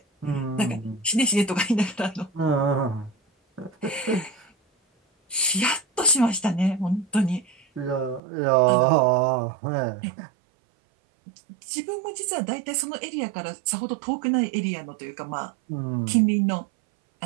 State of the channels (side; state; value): left; drops out; at 8.2 s